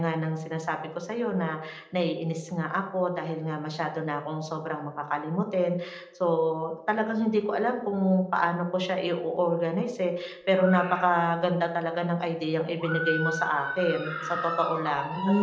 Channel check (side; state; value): both; identical; correlation 1.00